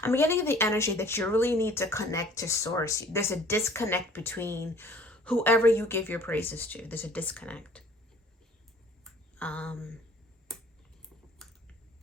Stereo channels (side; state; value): both; normal; correlation 0.52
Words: I'm getting the energy that you really need to connect to source. There's a disconnect between whoever you give your praises to. There's a disconnect.